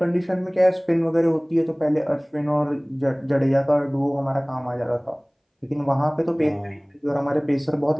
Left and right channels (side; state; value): both; identical; correlation 1.00